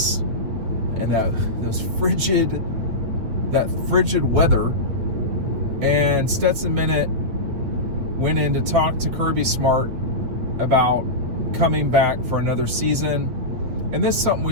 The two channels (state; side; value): late; left; 8.8 ms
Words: and that frigid weather, and Stetson Bennett went in to talk to Kirby Smart about coming back for another season. And this is something